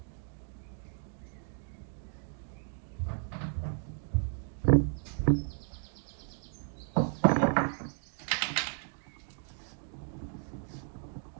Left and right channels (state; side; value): silent; left; 55 dB below the other